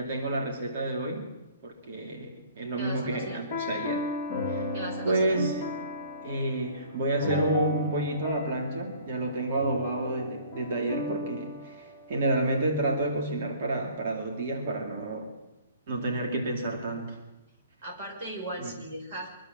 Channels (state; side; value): inverted; both; correlation -0.52